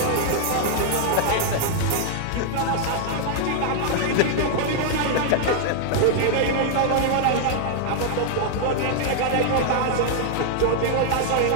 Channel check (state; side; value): different; both; correlation -0.01